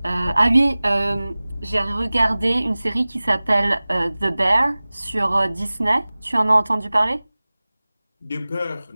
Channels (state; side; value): inverted; both; correlation -0.99